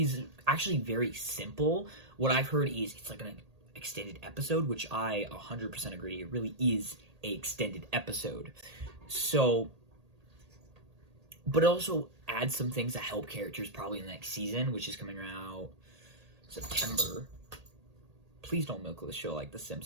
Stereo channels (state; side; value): late; left; 1.8 ms